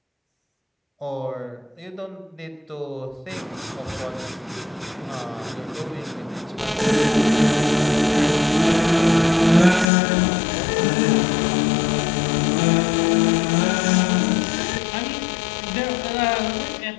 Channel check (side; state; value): right; drops out; at 9.9 s